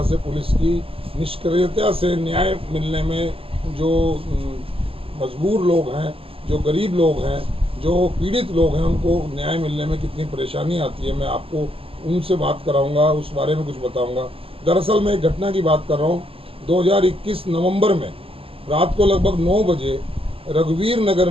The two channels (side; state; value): left; late; 0.27 ms